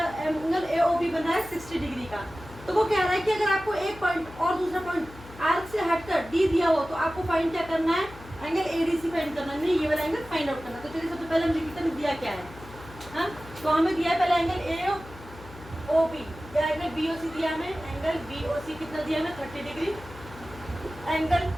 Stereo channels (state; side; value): noise; left; hum, 18 dB below the sound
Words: एंगल AOB बन रहा है 60 डिग्री का। तो वो कह रहा है कि अगर आपको एक पॉइंट और दूसरा पॉइंट आर्क से हटकर डी दिया हो तो आपको फाइंड क्या करना है, एंगल ADC फाइंड करना, नहीं ये वाला एंगल फाइंड आउट करना। तो चलिए सबसे पहले हम लिखते हैं दिया क्या है। हाँ, तो हमें दिया है पहले एंगल AOB या एंगल BOC दिया हमें, एंगल BOC कितना दिया हमें 30 डिग्री, एंगल